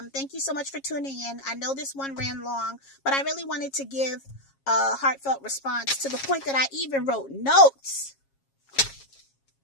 Thank you so much for tuning in. I know this one ran long, but I really wanted to give a heartfelt response, to the point that I even wrote notes,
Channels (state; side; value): late; right; 7.3 ms